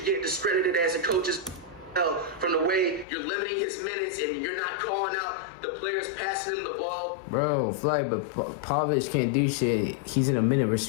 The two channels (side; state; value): right; drops out; at 3.1 s